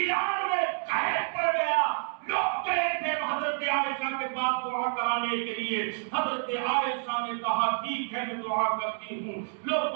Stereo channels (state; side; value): silent; left; 59 dB below the other